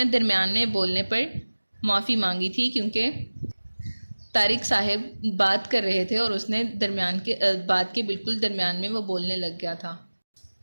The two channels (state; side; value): inverted; both; correlation -1.00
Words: درمیان میں بولنے پر معافی مانگی تھی، کیونکہ طارق صاحب بات کر رہے تھے اور اس نے بات کے بالکل درمیان میں وہ بولنے لگ گیا تھا۔